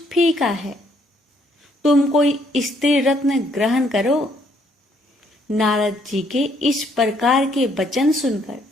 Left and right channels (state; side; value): normal; both; correlation 0.68